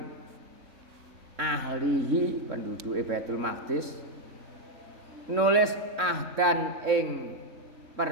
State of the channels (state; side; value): late; left; 3.6 ms